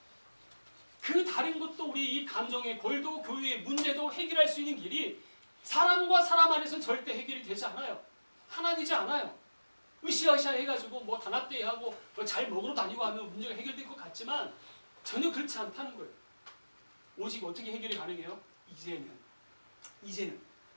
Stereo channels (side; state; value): both; inverted; correlation -1.00